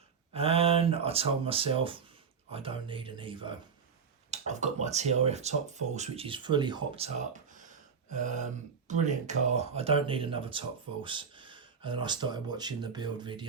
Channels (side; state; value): left; quieter; 6.1 dB